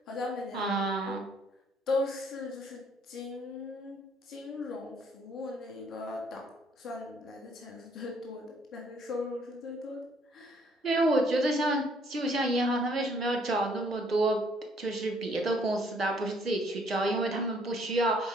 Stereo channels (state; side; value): normal; both; correlation 0.64